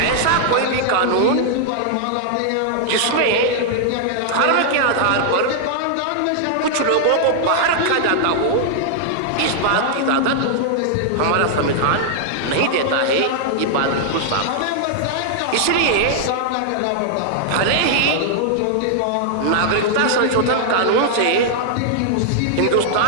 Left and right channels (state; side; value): different; both; correlation -0.01